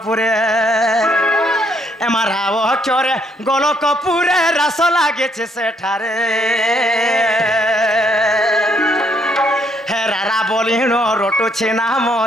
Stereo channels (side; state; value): both; normal; correlation 0.70